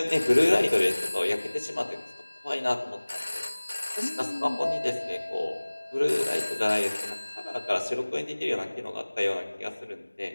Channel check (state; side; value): inverted; both; correlation -1.00